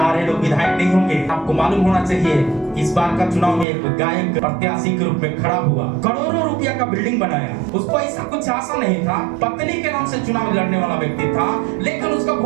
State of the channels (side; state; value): left; drops out; at 3.7 s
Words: लोग विधायक नहीं होंगे। आपको मालूम होना चाहिए इस बार का चुनाव में एक गायक प्रत्याशी के रूप में खड़ा हुआ, करोड़ों रुपया का बिल्डिंग बनाया। उसको ऐसा कुछ आशा नहीं था, पत्नी के नाम से चुनाव लड़ने वाला व्यक्ति था, लेकिन उसका